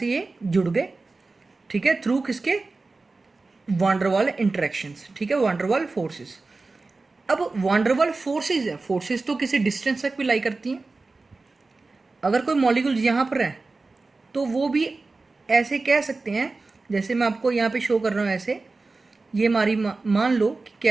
ये जुड़ गए। ठीक है। थ्रू किसके, वांडरवाल इंटरेक्शंस। ठीक है, वांडरवाल फोर्सेस। अब वांडरवाल फोर्सेस है, फोर्सेस तो किसी डिस्टेंस तक भी लाई करती हैं। अगर कोई मॉलिक्यूल यहाँ पर है तो वो भी ऐसे कह सकते हैं, जैसे मैं आपको यहाँ पे शो कर रहा हूँ ऐसे, ये हमारी मान लो कि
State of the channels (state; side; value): quieter; left; 3.7 dB